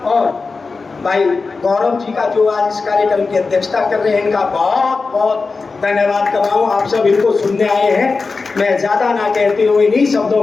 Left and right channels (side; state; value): right; quieter; 4.2 dB